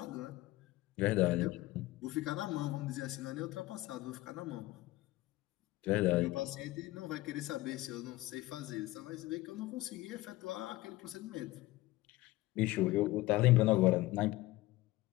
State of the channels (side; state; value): right; quieter; 18.5 dB